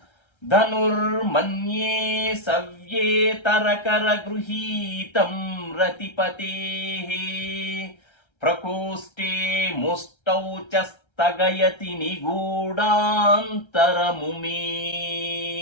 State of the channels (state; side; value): late; right; 1.3 ms